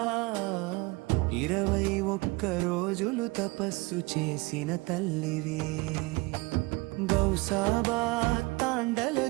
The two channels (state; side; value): quieter; left; 24.6 dB